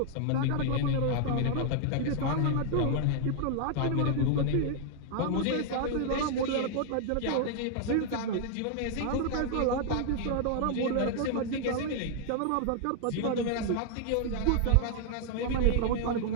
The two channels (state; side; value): different; both; correlation 0.00